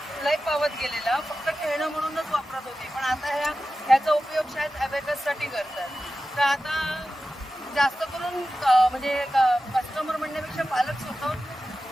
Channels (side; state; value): both; normal; correlation 0.93